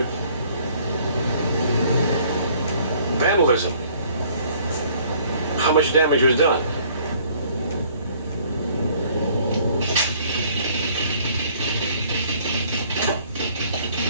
Vandalism. How much damage was done?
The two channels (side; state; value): both; inverted; correlation -0.59